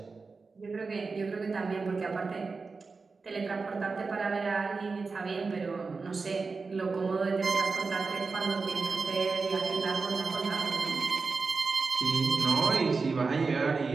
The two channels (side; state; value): left; quieter; 4.4 dB